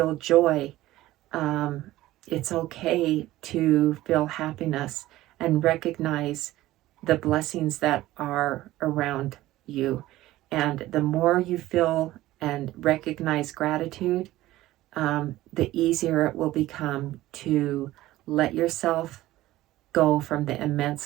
joy. It's okay to feel happiness and recognize the blessings that are around you. And the more you feel and recognize gratitude, the easier it will become to let yourself go from the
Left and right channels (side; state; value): left; quieter; 16.1 dB